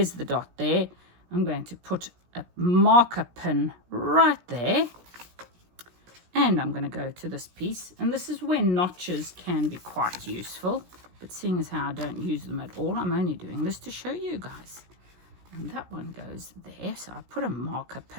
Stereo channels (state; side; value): late; left; 17 ms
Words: the dot there. I'm going to put a marker pin right there. And I'm going to go to this piece. And this is where notches can be quite useful. But seeing as how I don't use them at all, I'm only doing this to show you guys. And that one goes there. So I put a marker